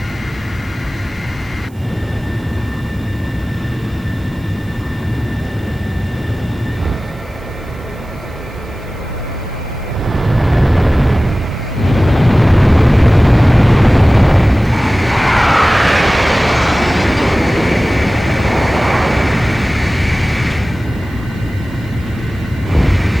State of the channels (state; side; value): noise; right; hiss, 30 dB below the sound